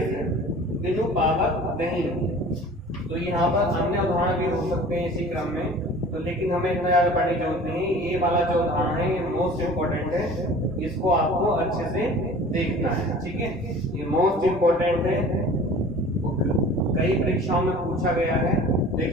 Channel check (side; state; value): both; normal; correlation 0.44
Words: बिनु पावक नहीं। तो यहाँ पर अन्य उदाहरण भी हो सकते हैं इसी क्रम में, तो लेकिन हमें इतना ज्यादा पढ़ने की जरूरत नहीं। ये वाला जो उदाहरण है ये मोस्ट इम्पोर्टेंट है, इसको आपको अच्छे से देखना है। ठीक है, ये मोस्ट इम्पोर्टेंट है, कई परीक्षाओं में पूछा गया है,